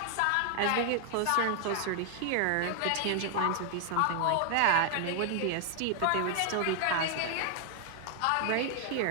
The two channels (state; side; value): different; both; correlation 0.00